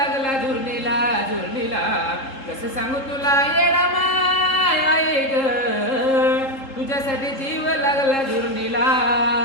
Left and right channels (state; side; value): late; right; 3.7 ms